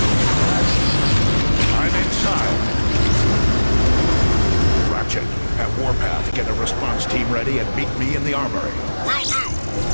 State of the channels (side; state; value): both; inverted; correlation -1.00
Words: I'm inside. Ratchet, at Warpath, get a response team ready and meet me in the armory. Will do.